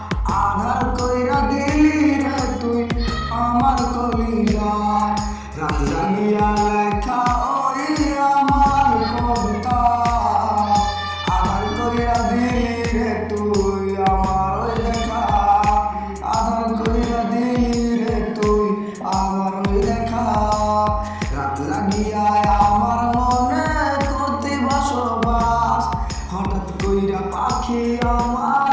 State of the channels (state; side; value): identical; both; correlation 1.00